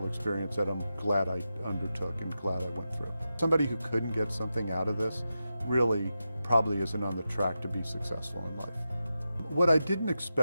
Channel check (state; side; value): inverted; both; correlation -0.90